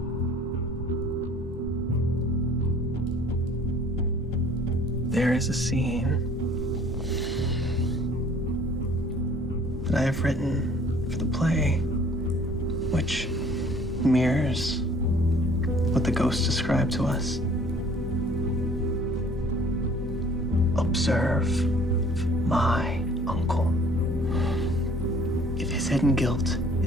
There is a scene that I have written for the play, which mirrors what the ghost described to us. Observe my uncle. If his hidden guilt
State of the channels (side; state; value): both; normal; correlation 0.54